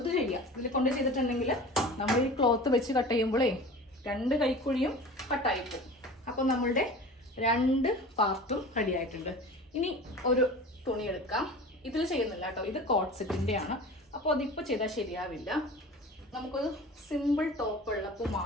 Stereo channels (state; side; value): normal; both; correlation 0.38